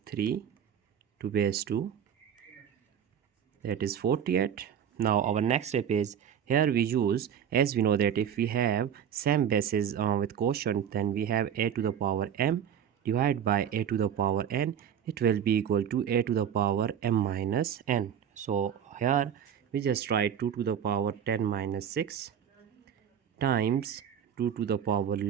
3 to base 2, that is 48. Now our next step is, here we use, as we know that if we have same bases with quotient, then we have a to the power m divided by a to the power n, it will be equal to a to the power m minus n. So here we just write 2 to the power 10 minus 6 times 2 to the power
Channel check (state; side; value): quieter; left; 8.8 dB